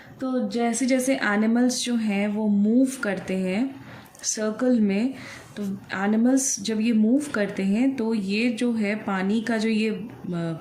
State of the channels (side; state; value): both; identical; correlation 1.00